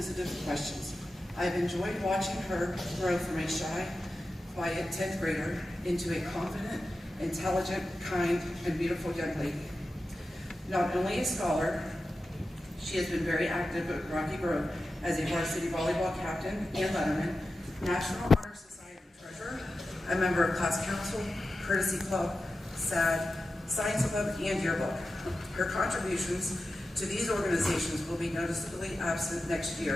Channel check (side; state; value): both; normal; correlation 0.92